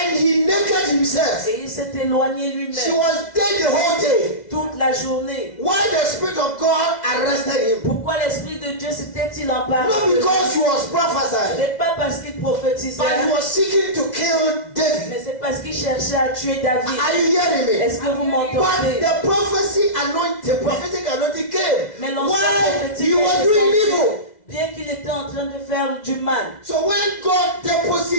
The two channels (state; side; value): late; right; 2.0 ms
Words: he naked himself. Et il s'est éloigné She lui-même was dead the whole day. toute la journée. Why the Spirit of God arrested him? Pourquoi l'Esprit de Dieu s'était-il emparé Not de lui? because he was Ce prophesying, n'est pas parce qu'il prophétisait, but he was seeking to kill David. mais c'est parce qu'il cherchait à tuer David. Are you hearing me? Est-ce que vous But m'entendez? the prophetic anointing came Mais l'ancien while prophétique he was est doing descendu, evil. bien qu'il était en train de faire du mal. So when God